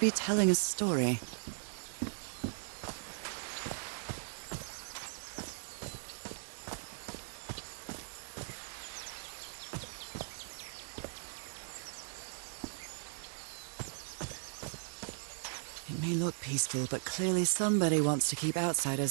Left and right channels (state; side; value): silent; left; digital silence